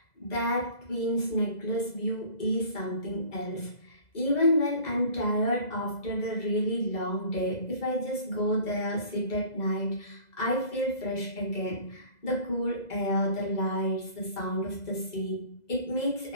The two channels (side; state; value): right; late; 2.0 ms